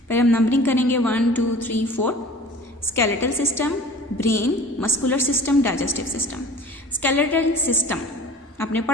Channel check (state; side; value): normal; both; correlation 0.43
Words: पहले हम नंबरिंग करेंगे 1 2 3 4। Skeletal system, brain, muscular system, digestive system. Skeletal system आपने